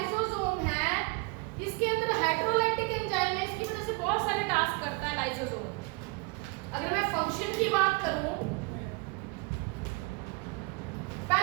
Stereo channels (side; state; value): left; quieter; 27.9 dB